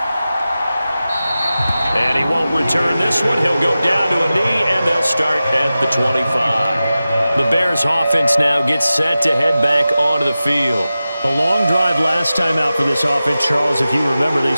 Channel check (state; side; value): inverted; both; correlation -0.95